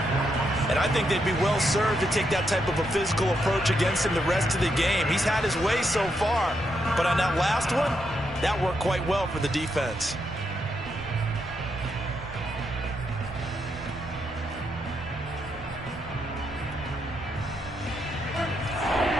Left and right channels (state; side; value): normal; both; correlation 0.80